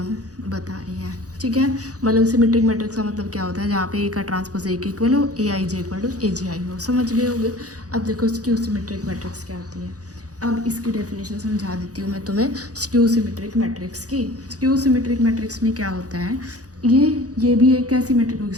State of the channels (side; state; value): left; late; 0.67 ms